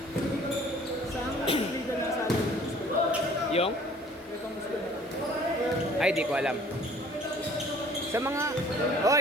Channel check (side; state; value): both; normal; correlation 0.53